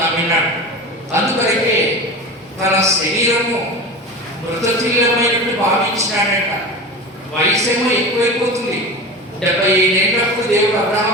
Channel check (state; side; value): normal; both; correlation 0.29